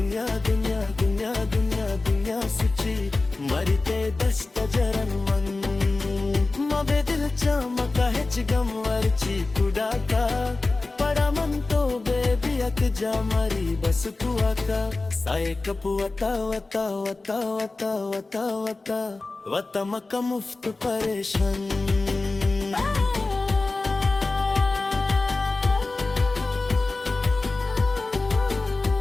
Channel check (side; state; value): right; quieter; 3.4 dB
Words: दुनिया दुनिया दुनिया दुनिया सुची मरी ते दस्त जरन मन मबे दिल चमका हेच गमवरची कुडाका पडा म्हणतो बेबी अक जा मारी बस तू आका साये कपू वता वता वता वता वता वता वता मका मुफ्त परेशान